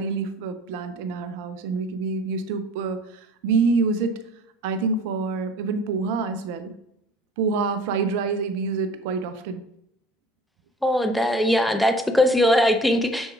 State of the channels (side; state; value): both; normal; correlation 0.48